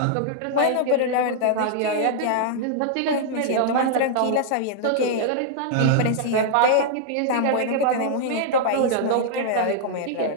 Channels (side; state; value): both; different; correlation -0.01